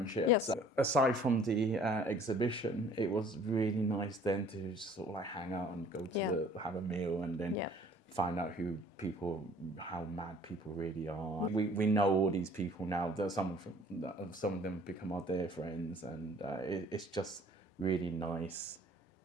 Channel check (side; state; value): both; normal; correlation 0.53